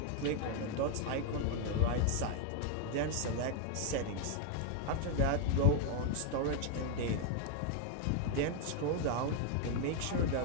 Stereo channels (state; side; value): different; both; correlation 0.01